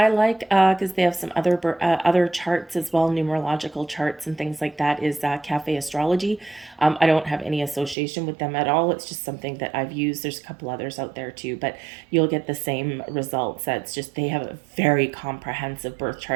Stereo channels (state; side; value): drops out; left; at 8.0 s